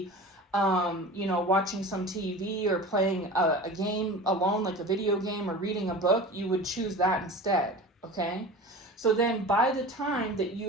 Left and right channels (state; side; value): normal; both; correlation 0.34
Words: watching some TV or playing a game alone, like a video game, or reading a book, you would choose that instead, okay? So then by the time that